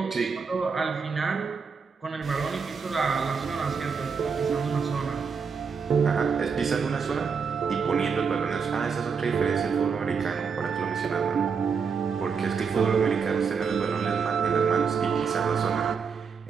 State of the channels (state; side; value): quieter; left; 5.8 dB